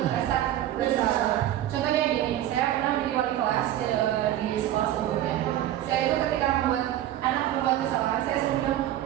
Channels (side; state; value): left; quieter; 12.8 dB